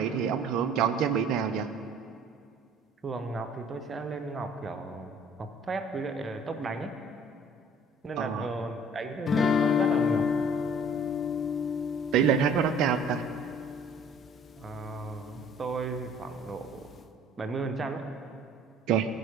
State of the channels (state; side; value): normal; both; correlation 0.53